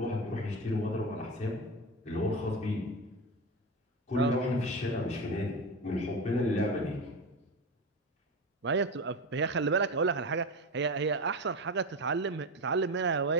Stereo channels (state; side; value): normal; both; correlation 0.21